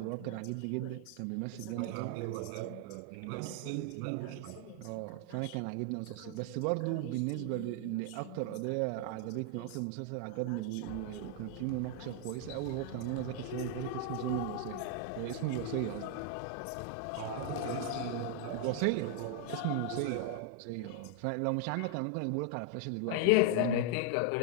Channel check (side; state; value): both; different; correlation 0.00